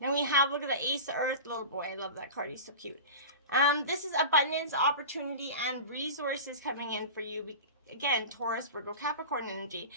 we have, look at the Ace of Earth, little boy. I love that card. He's so cute. This is abundance, opportunity, and resources coming in for you. Again, Taurus, Virgo, Capricorn energy.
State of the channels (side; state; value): both; inverted; correlation -0.32